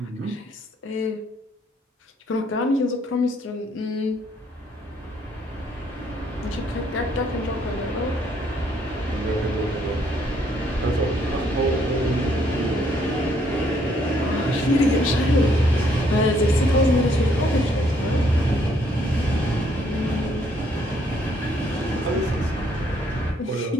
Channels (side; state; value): both; normal; correlation 0.68